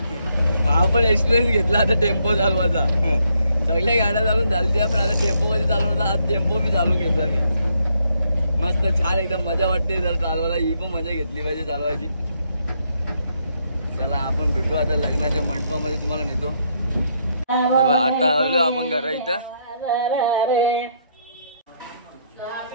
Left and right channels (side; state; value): both; inverted; correlation -0.74